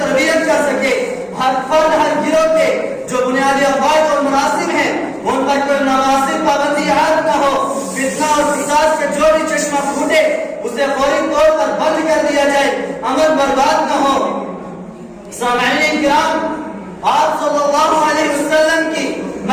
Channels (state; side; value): identical; both; correlation 1.00